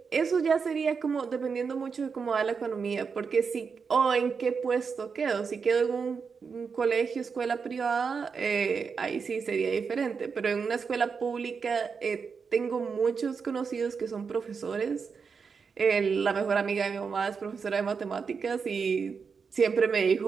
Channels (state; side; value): quieter; left; 5.6 dB